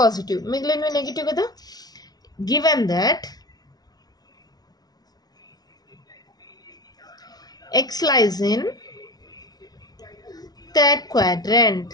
మిగిలినవి నెగిటివ్ కదా. Given that x lies in third quadrant,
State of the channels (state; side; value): late; right; 0.19 ms